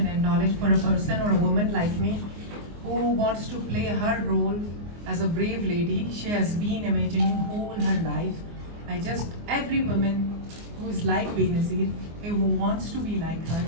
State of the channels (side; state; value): left; late; 24 ms